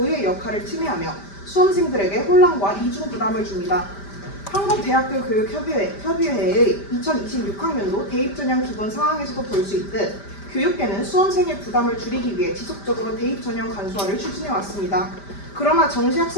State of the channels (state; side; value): late; right; 5.0 ms